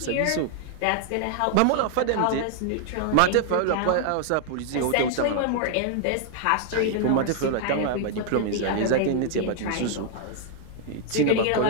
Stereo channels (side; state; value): both; different; correlation 0.00